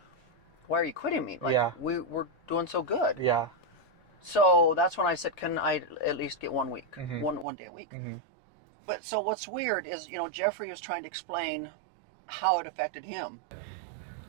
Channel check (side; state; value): left; drops out; at 7.5 s